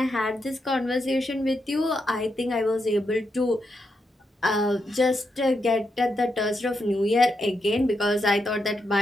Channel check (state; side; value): normal; both; correlation 0.83